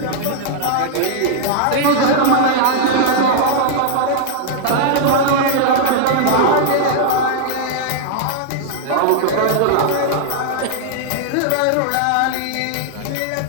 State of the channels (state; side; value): different; both; correlation -0.01